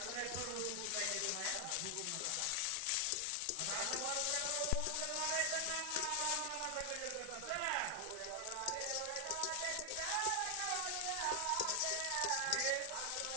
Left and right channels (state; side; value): different; both; correlation 0.00